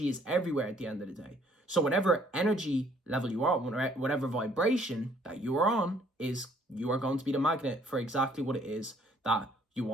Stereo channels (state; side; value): normal; both; correlation 0.62